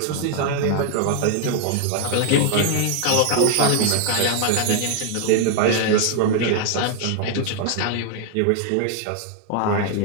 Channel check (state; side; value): different; both; correlation 0.00